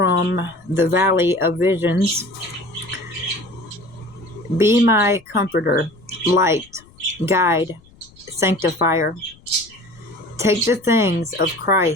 the Valley of Visions. Be my comforter, light, guide, sanctifier. Take the things of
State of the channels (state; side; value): noise; left; rumble, 27 dB below the sound